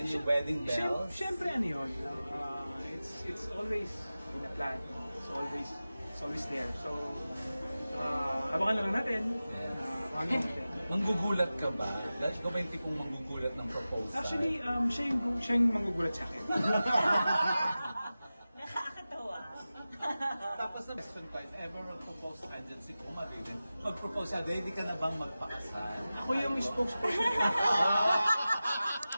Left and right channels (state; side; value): inverted; both; correlation -0.95